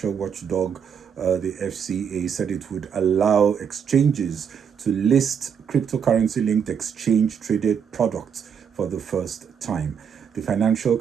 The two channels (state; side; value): quieter; left; 7.4 dB